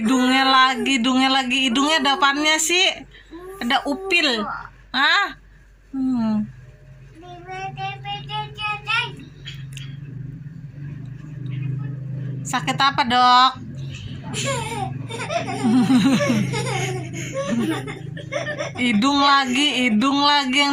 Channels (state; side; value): identical; both; correlation 1.00